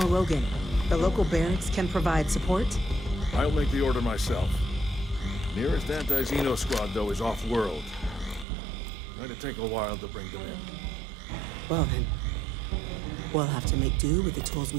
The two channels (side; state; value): left; drops out; at 8.5 s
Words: Logan, the local barracks can provide support? I'll make the order myself. Nearest anti-Xeno squad, though, is off-world. Going to take a while to bring them in. Well then, we'll have to make do with the tools